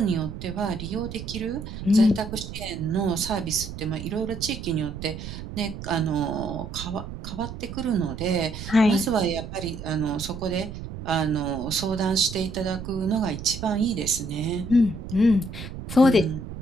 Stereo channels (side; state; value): right; noise; rumble, 9 dB below the sound